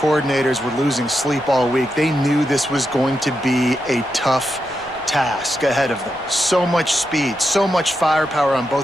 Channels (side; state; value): left; noise; rumble, 29 dB below the sound